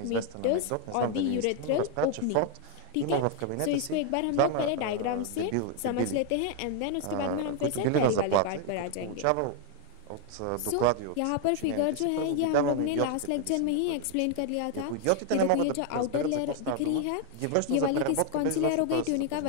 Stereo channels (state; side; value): different; both; correlation 0.00